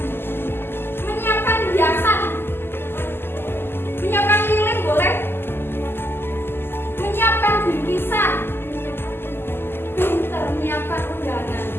menyiapkan hiasan, menyiapkan lilin boleh, menyiapkan bingkisan, pinter menyiapkan undangan.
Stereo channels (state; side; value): late; right; 0.11 ms